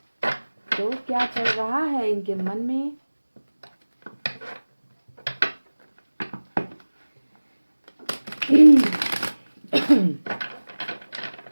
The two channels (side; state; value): both; inverted; correlation -1.00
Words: तो क्या चल रहा है इनके मन में,